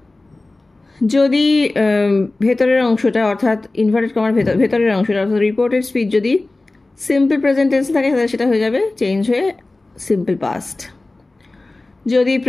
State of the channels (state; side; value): quieter; right; 3.0 dB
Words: যদি ভেতরের অংশটা অর্থাৎ ইনভার্টেড কমার ভেতরের অংশটা অর্থাৎ রিপোর্টেড স্পিচ যদি সিম্পল প্রেজেন্ট টেন্সে থাকে তাহলে সেটা হয়ে যাবে চেঞ্জ হয়ে সিম্পল পাস্ট। যদি